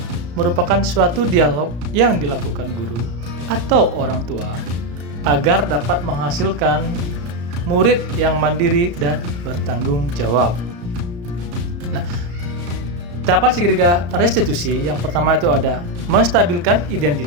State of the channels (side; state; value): left; late; 34 ms